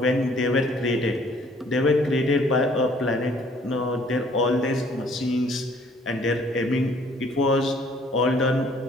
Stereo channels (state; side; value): normal; both; correlation 0.59